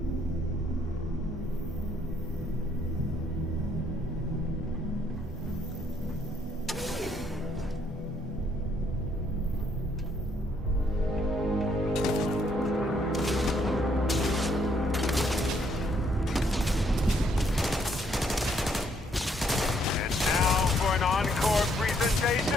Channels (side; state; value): both; normal; correlation 0.69